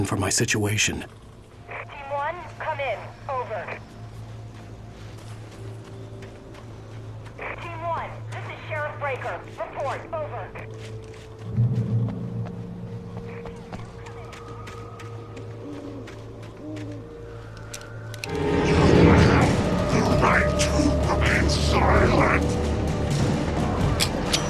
for my situation. Team 1, come in. Over. Team 1, this is Sheriff Breaker. Report. Over. You have the right to remain silent.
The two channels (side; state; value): both; identical; correlation 1.00